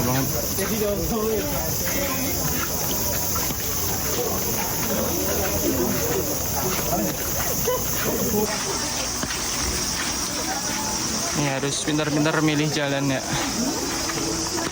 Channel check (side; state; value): both; identical; correlation 1.00